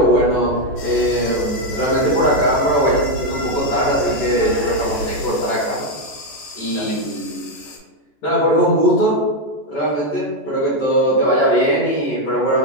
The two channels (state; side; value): late; right; 14 ms